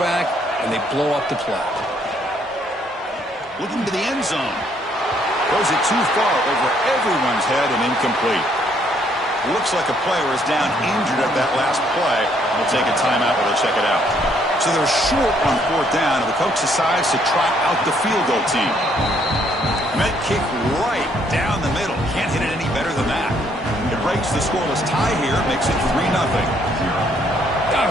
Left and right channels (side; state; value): both; normal; correlation 0.68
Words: and they blow up the play. Looking to the end zone. Throws it too far over everyone's head and incomplete. Looks like a player is down injured at that last play. We'll take a timeout while they check it out. So they're short on 4th down, and the coach decides to trot out the field goal team. Met kick right down the middle. Can't hit it any better than that. It breaks the scoreless tie here, makes it 3-0. I